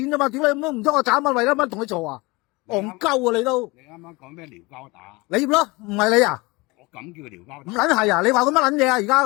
啫嘛！屌你唔通我找乜為咗乜同你做啊？戇鳩啊你都！你啱啱講咩撩交打？你咯，唔係你啊？我咁叫撩交唔打？撚係啊！你話我乜撚嘢啊？而家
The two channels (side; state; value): right; quieter; 24.1 dB